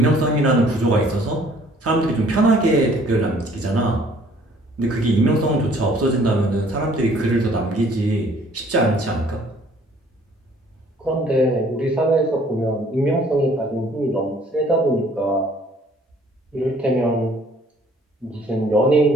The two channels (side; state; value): both; normal; correlation 0.58